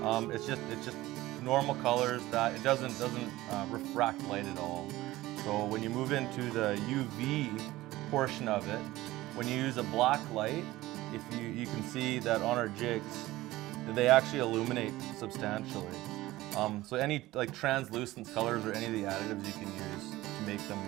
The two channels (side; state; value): left; quieter; 17.4 dB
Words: It's just normal colors that it doesn't refract light at all. So when you move into the UV portion of it, when you use a black light, if you can see that on our jigs, they actually illuminate substantially. So any like translucent colors or any of the additives you can use to make them.